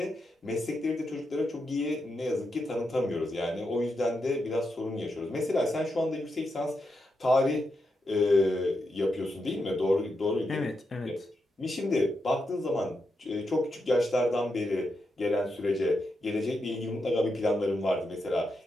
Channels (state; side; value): normal; both; correlation 0.85